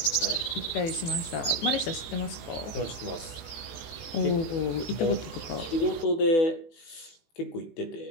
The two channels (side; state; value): right; late; 18 ms